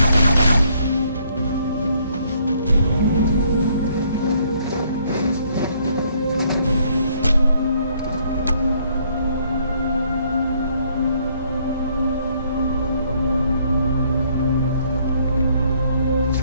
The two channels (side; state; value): both; inverted; correlation -0.67